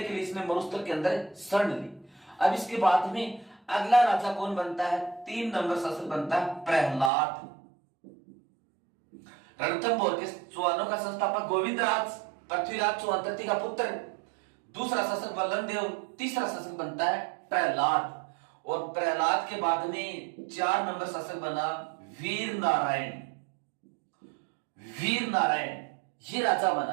के लिए इसने मरुस्थल के अंदर शरण ली। अब इसके बाद में अगला राजा कौन बनता है? 3 नंबर शासक बनता है प्रहलाद। रणथंभौर के चौहानों का संस्थापक गोविंदराज, पृथ्वीराज चौहान तृतीय का पुत्र। दूसरा शासक वल्लन देव, तीसरा शासक बनता है प्रहलाद। और प्रहलाद के बाद में 4 नंबर शासक बना वीर नारायण। वीर नारायण ये राजा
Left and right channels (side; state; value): left; drops out; at 7.1 s